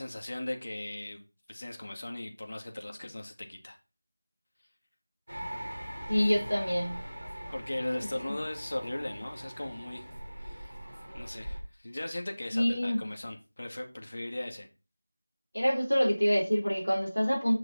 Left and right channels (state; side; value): inverted; both; correlation -0.99